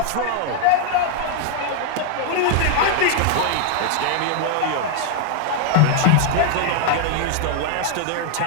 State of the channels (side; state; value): both; different; correlation 0.00